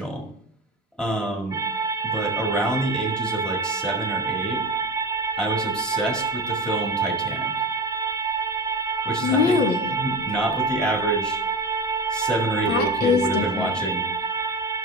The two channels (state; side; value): normal; both; correlation 0.26